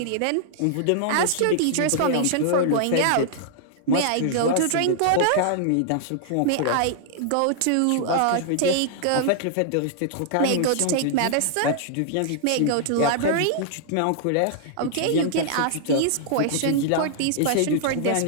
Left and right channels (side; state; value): both; different; correlation -0.01